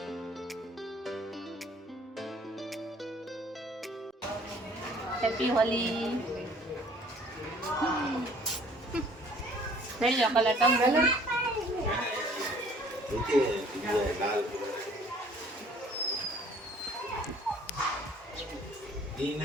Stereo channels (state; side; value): normal; both; correlation 0.56